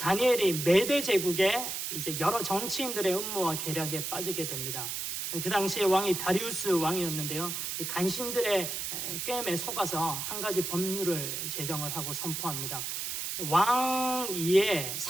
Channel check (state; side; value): noise; right; hiss, 3 dB below the sound